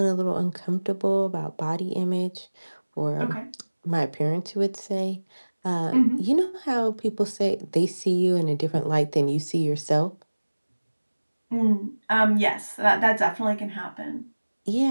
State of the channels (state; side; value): inverted; both; correlation -1.00